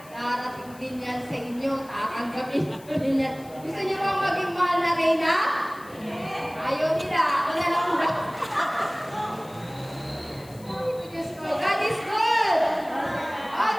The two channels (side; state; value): left; noise; hiss, 23 dB below the sound